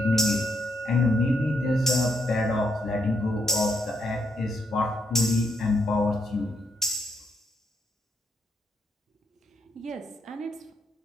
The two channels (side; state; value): both; normal; correlation 0.77